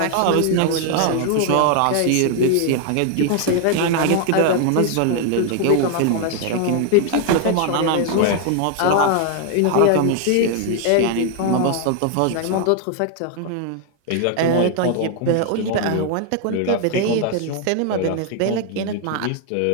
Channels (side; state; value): both; different; correlation 0.00